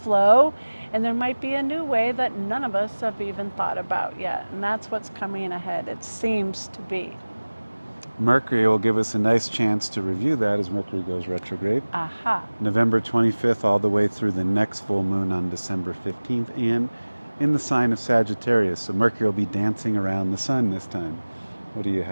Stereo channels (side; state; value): both; inverted; correlation -1.00